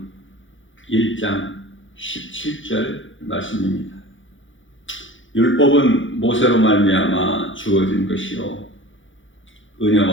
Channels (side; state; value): right; late; 0.56 ms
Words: 1장 17절 말씀입니다. 율법은 모세로 말미암아 주어진 것이요